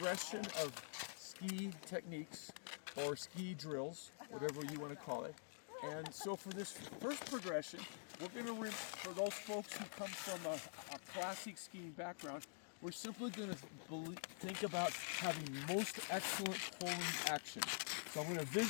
of ski techniques or ski drills, whatever you want to call it. And so for this first progression, we're going to, for those folks who come from a classic skiing background, we're simply going to think about having most excellent pulling action. So I'm going to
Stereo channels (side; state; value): right; silent; digital silence